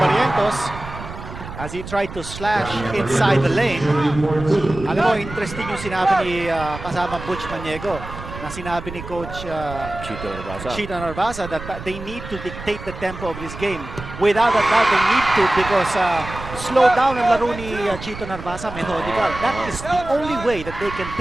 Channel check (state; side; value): noise; right; rumble, 11 dB below the sound